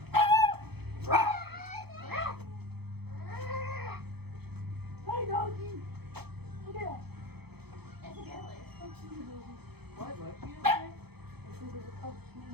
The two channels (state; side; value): late; left; 0.97 ms